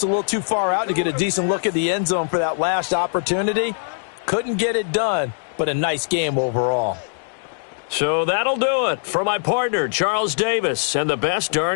a little too far out to get a decent look at the end zone for that last opportunity. Couldn't get it done, but a nice game overall. So that'll do it for my partner, Charles Davis, and the best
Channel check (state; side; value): silent; right; digital silence